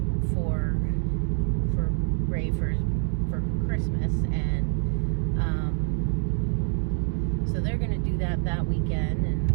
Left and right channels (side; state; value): left; silent; 61 dB below the other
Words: for Ray for Christmas, and so they're gonna do that weekend, and